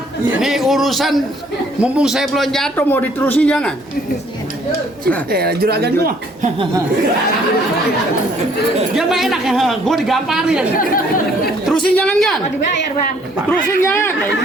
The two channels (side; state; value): both; normal; correlation 0.62